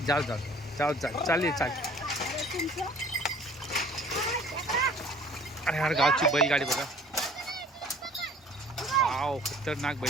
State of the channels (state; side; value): normal; both; correlation 0.50